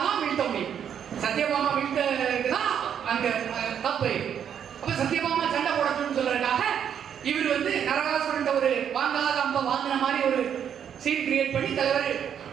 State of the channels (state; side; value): quieter; left; 8.6 dB